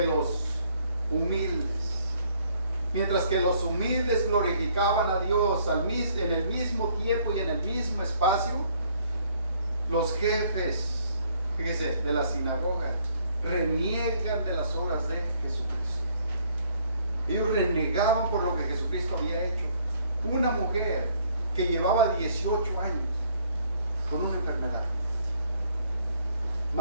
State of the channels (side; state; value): both; inverted; correlation -0.64